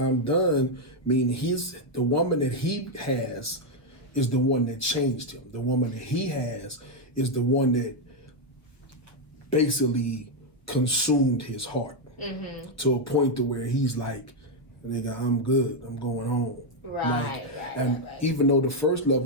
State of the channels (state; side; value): late; right; 1.0 ms